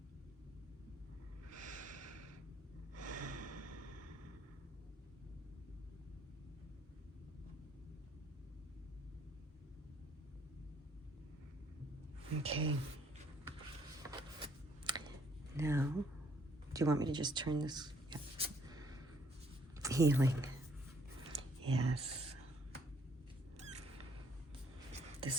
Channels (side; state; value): both; normal; correlation 0.65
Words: Okay. Now, do you want me to just turn this? Yeah. Healing. Yes.